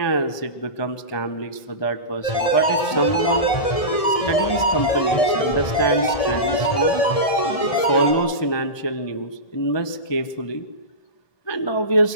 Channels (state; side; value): late; right; 1.7 ms